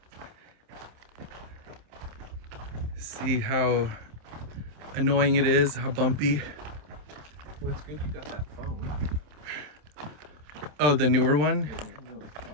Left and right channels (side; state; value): left; late; 27 ms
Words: see how annoying it is, how bumpy. Well, it's good you got that phone. Oh, the newer one? Yeah, no, it's